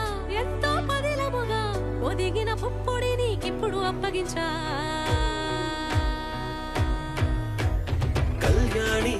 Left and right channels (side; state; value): both; identical; correlation 1.00